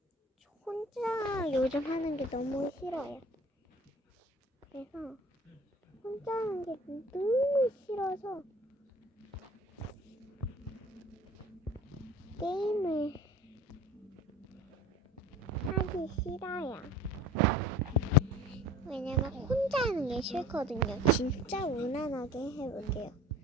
저 혼자 요즘 하는 게 너무 싫어요. 그래서 혼자 하는 게 너무 싫어서 게임을 하기 싫어요. 왜냐면 혼자 하는 게 싫거든요. 진짜 무난하게 해볼게요.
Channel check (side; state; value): both; normal; correlation 0.45